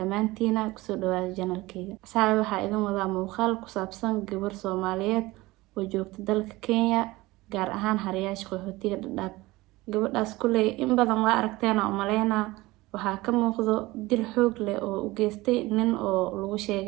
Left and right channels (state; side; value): quieter; left; 20.1 dB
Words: kusoo dhawaada channelkayga. Asxaabi waxaa idin wadaa muuqaal ku saabsan gabar Soomaaliyeed oo joogta dalka Kenya gaar ahaan Haryaasha qaxootiga Dadaab. gabadhaas kulay in badan waa aragteena oo maleynaa waxaa ka muuqdo dil xoog leh oo u geystay nin oo lagu